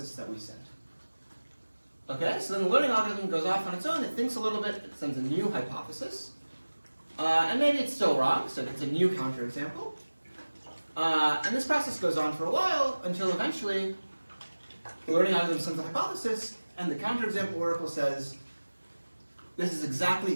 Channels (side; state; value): both; inverted; correlation -1.00